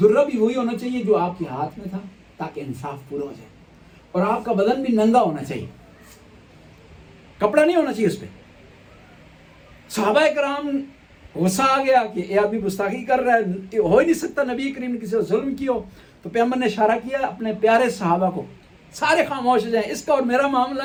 درہ بھی وہی ہونا چاہیے جو آپ کے ہاتھ میں تھا تاکہ انصاف پورا ہو جائے، اور آپ کا بدن بھی ننگا ہونا چاہیے، کپڑا نہیں ہونا چاہیے اس پہ. صحابہ کرام غصہ آ گیا کہ یہ آدمی گستاخی کر رہا ہے، ہو ہی نہیں سکتا نبی کریم نے کسی سے ظلم کی ہو. تو پیغمبر نے اشارہ کیا اپنے پیارے صحابہ کو، سارے خاموش ہو جائیں، اس کا اور میرا معاملہ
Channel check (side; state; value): both; identical; correlation 1.00